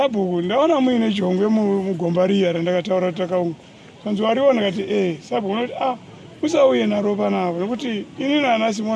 ndaona muine jongwe mugomba riya randakataura takaunga. Zvanzi wariona kati Sabhuku unoti usauye naro panapa nekuti ini nana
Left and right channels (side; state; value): both; identical; correlation 1.00